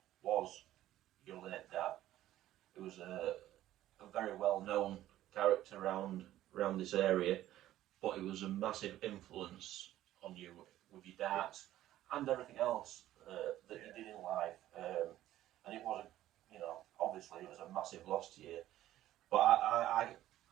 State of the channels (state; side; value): quieter; left; 13.8 dB